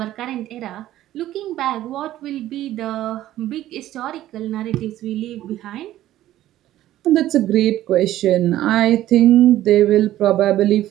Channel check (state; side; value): quieter; left; 13.8 dB